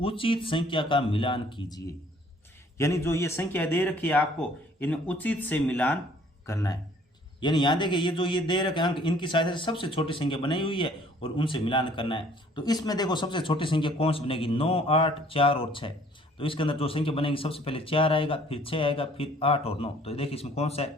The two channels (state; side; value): normal; both; correlation 0.57